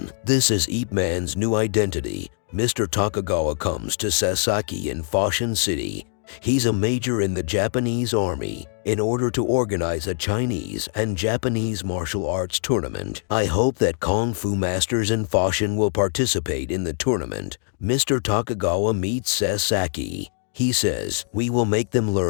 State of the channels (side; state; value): right; silent; digital silence